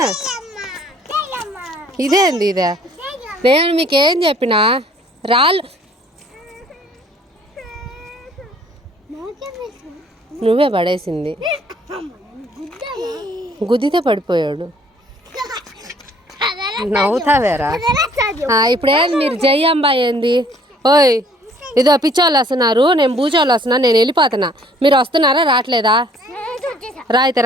ఇదేంది ఇదే? నేను మీకేం చెప్పినా రాళ్ళు నువ్వే పడేసింది. గుద్దితే పడిపోయాడు. నవ్వుతావేరా? ఇప్పుడేం మీరు జయ్యంబా ఏంది? ఓయ్ ఇదో పిచ్చోళ్ళు వస్తున్నారు, నేను బూచోళ్ళు వస్తున్నా, నేను వెళ్ళిపోతున్నా. మీరు వస్తున్నారా రావట్లేదా? అయితే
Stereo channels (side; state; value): both; normal; correlation 0.58